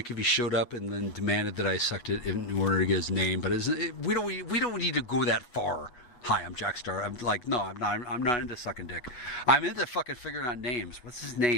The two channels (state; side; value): late; right; 8.2 ms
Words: if he showed up and then demanded that I sucked it in order to get his name, but we don't need to go that far. Hi, I'm Jackstar. I'm like, no, I'm not into sucking dick. I'm into fucking figuring out names. What's his